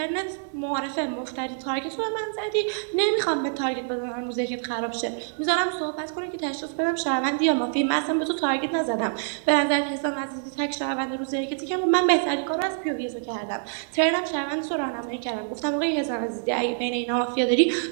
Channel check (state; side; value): silent; left; 61 dB below the other